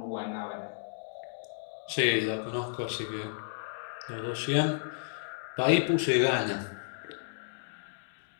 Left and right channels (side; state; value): right; silent; digital silence